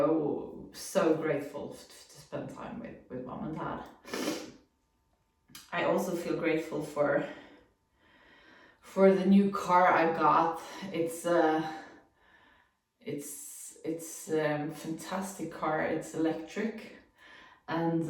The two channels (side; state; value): both; identical; correlation 1.00